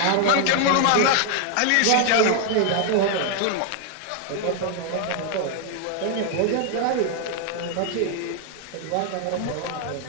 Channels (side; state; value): both; different; correlation 0.00